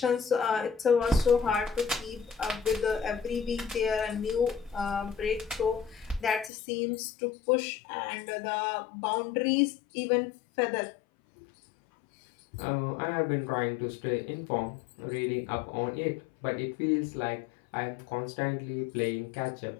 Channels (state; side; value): drops out; right; at 6.5 s